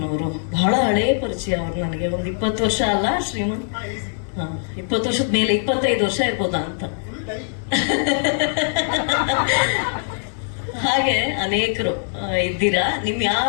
ಅವರು ಬಹಳ ಹಳೇ ಪರಿಚಯ. ಅವರು ನನಗೆ ಒಂದು 20 ವರ್ಷ ಅಲ್ಲ ಶ್ರೀಮನ್? 20 ವರ್ಷದ ಮೇಲೆ, 25 ವರ್ಷ ಇರ್ಬೋದಾ ಅಂತ. ಹಾಗೆ ಅನೇಕರು ಇದ್ದೀರಾ. ನಿಮ್ ಯಾರ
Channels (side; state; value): right; silent; digital silence